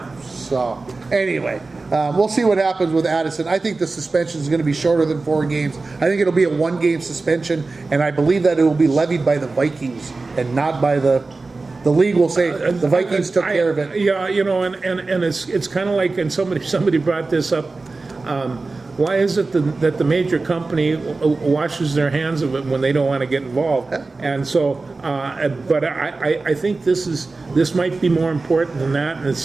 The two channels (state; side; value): quieter; left; 3.7 dB